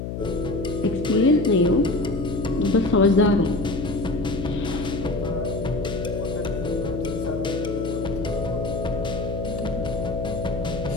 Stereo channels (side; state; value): left; noise; hum, 5 dB below the sound